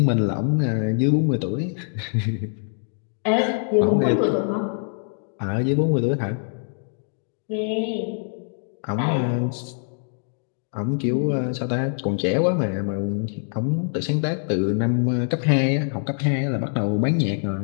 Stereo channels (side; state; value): right; silent; 63 dB below the other